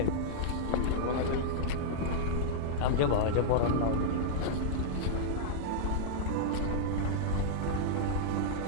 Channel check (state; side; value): different; both; correlation -0.02